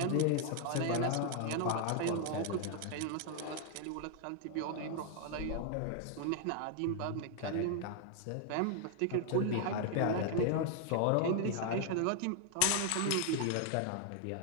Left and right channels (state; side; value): different; both; correlation 0.00